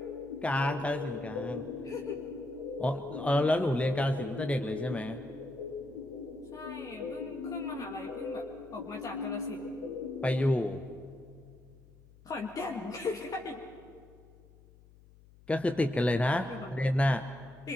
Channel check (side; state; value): left; noise; hum, 24 dB below the sound